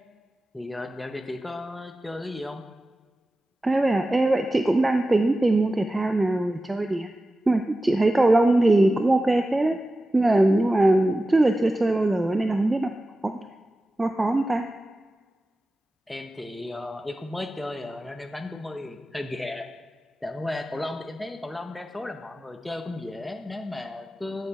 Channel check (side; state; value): both; normal; correlation 0.94